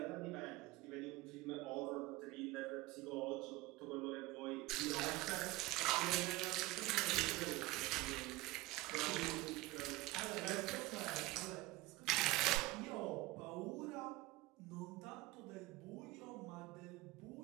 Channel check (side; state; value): left; quieter; 20.0 dB